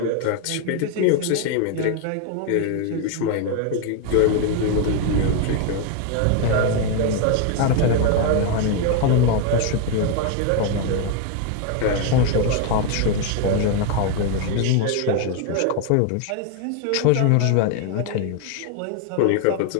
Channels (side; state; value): both; different; correlation 0.01